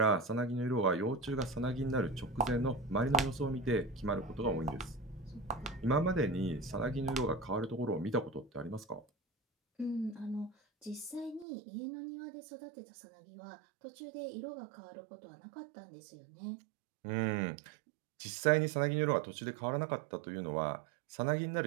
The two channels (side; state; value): left; drops out; at 11.5 s